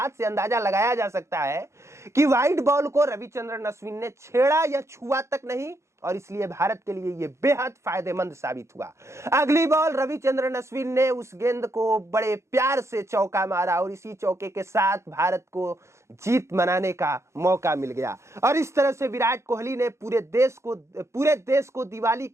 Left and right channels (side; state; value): left; late; 0.14 ms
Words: से अंदाजा लगाया जा सकता है कि वाइड बॉल को रविचंद्रन अश्विन ने छेड़ा या छुआ तक नहीं, और इसलिए भारत के लिए यह बेहद फायदेमंद साबित हुआ। अगली बॉल रविचंद्रन अश्विन ने उस गेंद को बड़े प्यार से चौका मारा और इसी चौके के साथ भारत को जीत मनाने का मौका मिल गया। और इस तरह से विराट कोहली ने पूरे देश को दिवाली